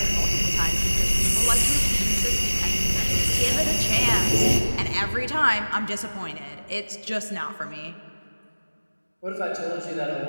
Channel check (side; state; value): both; inverted; correlation -1.00